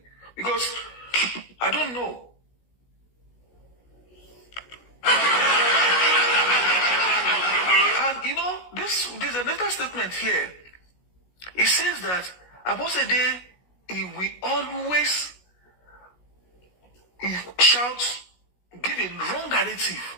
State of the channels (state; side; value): late; right; 16 ms